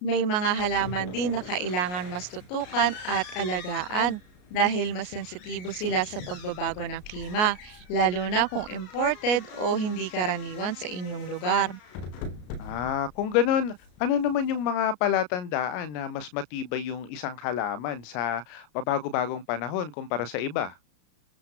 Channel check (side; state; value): right; late; 33 ms